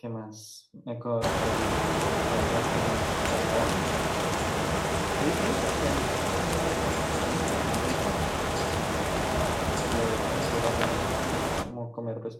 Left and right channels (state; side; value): identical; both; correlation 1.00